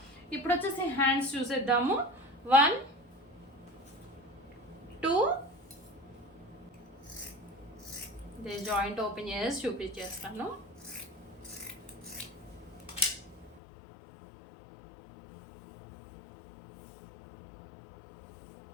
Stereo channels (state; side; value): drops out; right; at 13.6 s